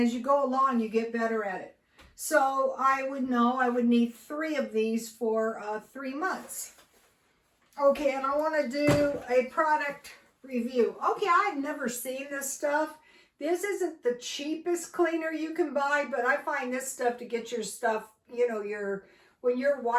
you go along, you get better at it. So I would know I would need 3 of these for 3 months. Okay, and I want to do a product review. Okay, I've never seen this stuff. This isn't the cheapest cleaner you can buy, but I find this stuff to get your stuff, you know, when you're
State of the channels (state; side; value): identical; both; correlation 1.00